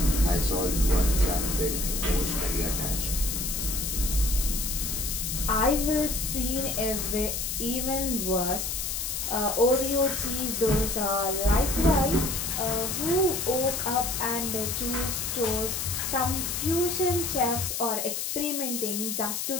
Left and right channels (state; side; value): noise; left; hiss, 2 dB below the sound